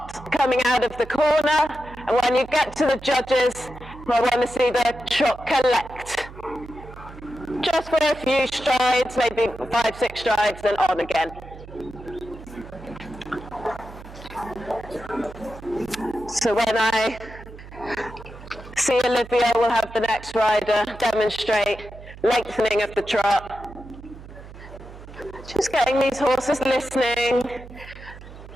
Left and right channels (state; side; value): noise; right; hum, 16 dB below the sound